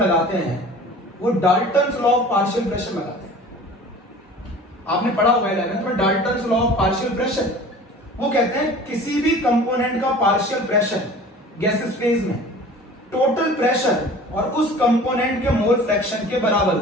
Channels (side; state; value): both; normal; correlation 0.43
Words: हैं वो Dalton's law of partial pressure लगाते हैं। आपने पढ़ा होगा 11th में Dalton's law of partial pressure. वो कहते हैं किसी भी कंपोनेंट का पार्शियल प्रेशर गैसियस फेज में टोटल प्रेशर और उस कंपोनेंट के मोल फ्रैक्शन के बराबर